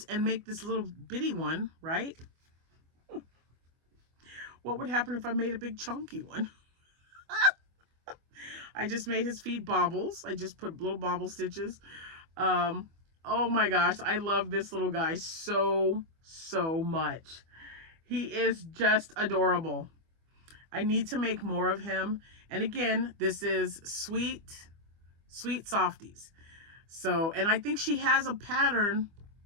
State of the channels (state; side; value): late; left; 25 ms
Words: and make this little bitty one, right? What would happen if I made a big chunky one? I just made his feet bobbles. I just put little bobble stitches. Oh my gosh, I love this little guy so much. He is just adorable. I need to make more of him. And again, this is Sweet Softies. So, and I think she has a pattern.